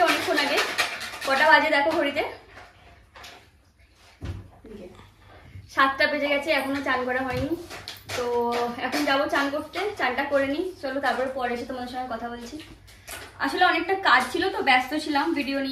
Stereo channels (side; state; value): both; identical; correlation 1.00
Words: অনেকক্ষণ আগে। কটা বাজে দেখো ঘড়িতে, 7টা বেজে গেছে, এখনো চান করা হয়নি। তো এখন যাবো চান করতে, চানটা করে নিই। চলো, তারপরে পরে এসে তোমাদের সঙ্গে কথা বলছি। আসলে অনেকটা কাজ ছিল, তো ব্যস্ত ছিলাম ভিডিও